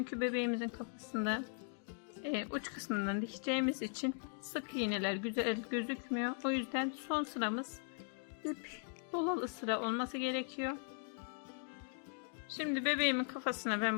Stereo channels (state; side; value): silent; right; 52 dB below the other